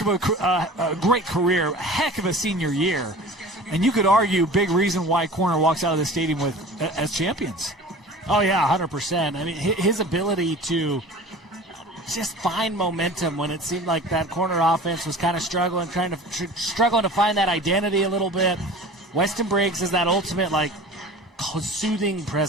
a great career, a heck of a senior year. And you could argue big reason why corner walks out of the stadium as champions. Oh, yeah, 100%. I mean, his ability to just find momentum when it seemed like that corner offense was kind of struggling to find that identity a little bit. Weston Briggs is that ultimate, soothing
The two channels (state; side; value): normal; both; correlation 0.40